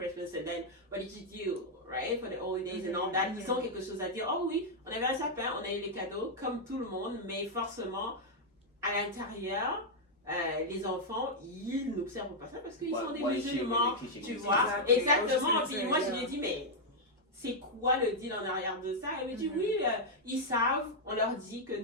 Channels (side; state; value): both; normal; correlation -0.03